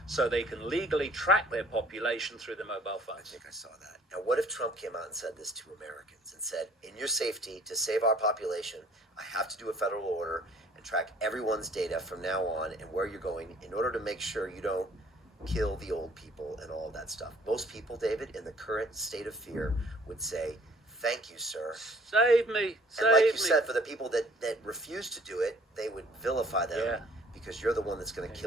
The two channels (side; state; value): both; normal; correlation 0.57